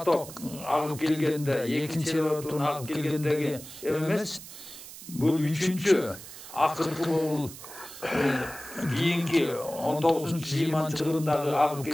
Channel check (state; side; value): noise; right; hiss, 14 dB below the sound